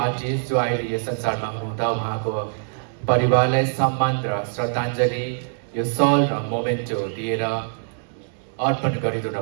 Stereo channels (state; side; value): silent; left; digital silence